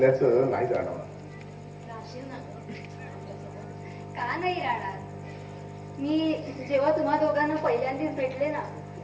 नाही जाणवणार. राहशील ना गं आमच्यासोबत? का नाही राहणार? मी जेव्हा तुम्हा दोघांना पहिल्यांदाच भेटले ना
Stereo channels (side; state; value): both; identical; correlation 1.00